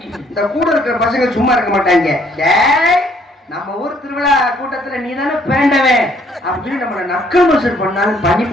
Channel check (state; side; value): normal; both; correlation 0.64